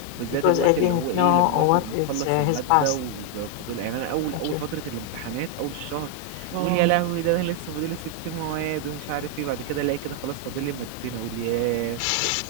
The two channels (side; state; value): both; different; correlation 0.00